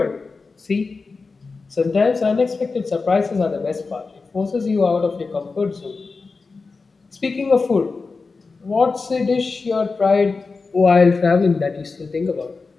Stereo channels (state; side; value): quieter; right; 4.2 dB